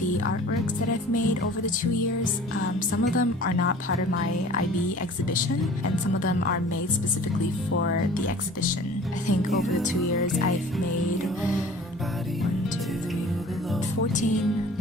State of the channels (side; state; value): both; normal; correlation 0.46